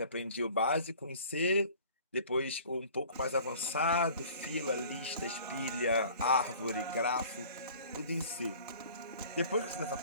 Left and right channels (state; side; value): inverted; both; correlation -0.48